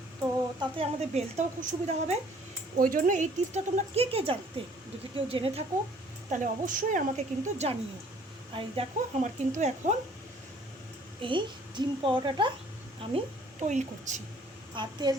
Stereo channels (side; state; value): both; normal; correlation 0.57